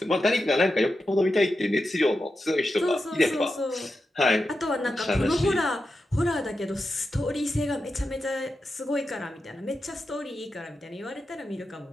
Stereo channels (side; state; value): both; normal; correlation 0.90